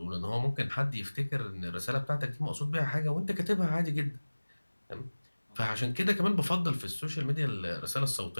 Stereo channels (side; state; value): both; inverted; correlation -1.00